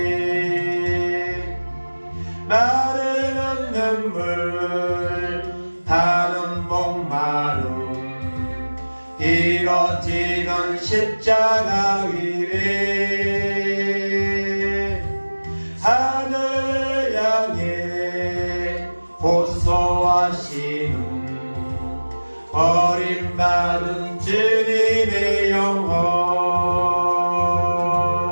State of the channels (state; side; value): inverted; both; correlation -1.00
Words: 눈물 다는 목마름 이뤄지던 십자가 위에 하늘 향해 호소하시는 버림받은 주님의 영혼